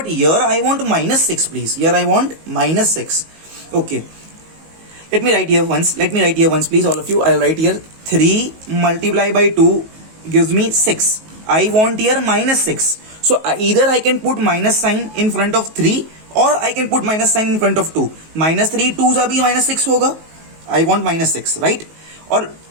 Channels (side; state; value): left; late; 19 ms